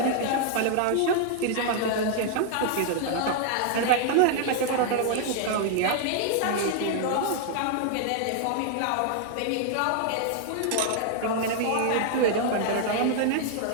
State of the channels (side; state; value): both; different; correlation 0.00